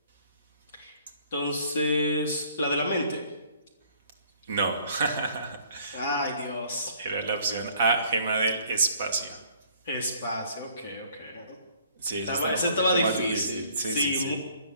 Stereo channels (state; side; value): inverted; both; correlation -0.59